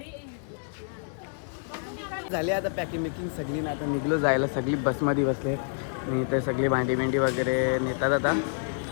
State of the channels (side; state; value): right; silent; digital silence